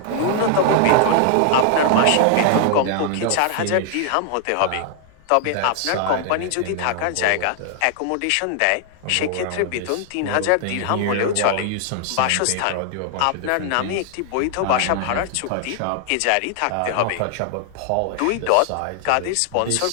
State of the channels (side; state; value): both; different; correlation 0.00